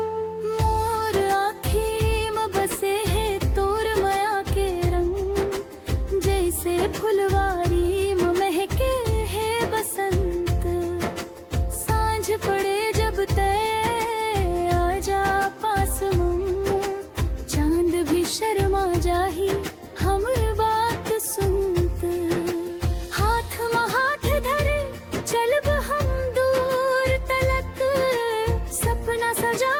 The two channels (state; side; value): identical; both; correlation 1.00